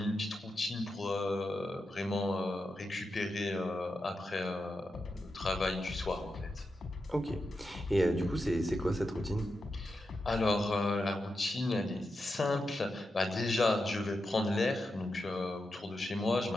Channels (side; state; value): both; normal; correlation 0.88